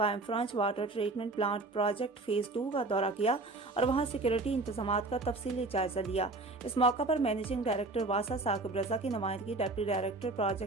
French water treatment plant project phase 2 का दौरा किया और वहां सिक्योरिटी इंतजामात का तफसीली जायजा लिया। इस मौका पर मैनेजिंग डायरेक्टर वासा साकिब रजा की नुमाइंदगी deputy director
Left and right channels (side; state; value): left; quieter; 3.2 dB